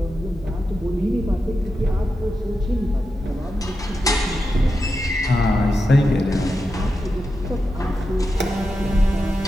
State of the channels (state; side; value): normal; both; correlation 0.89